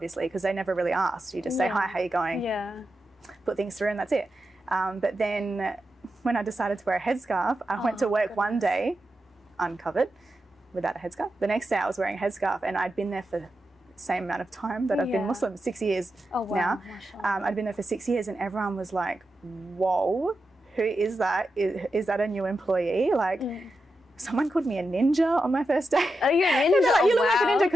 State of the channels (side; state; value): both; normal; correlation 0.89